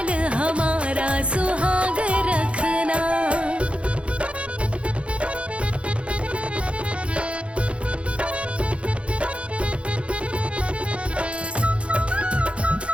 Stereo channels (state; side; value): late; left; 0.060 ms